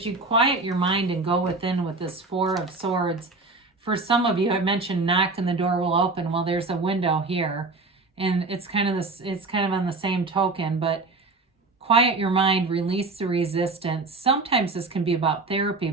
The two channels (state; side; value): quieter; left; 3.6 dB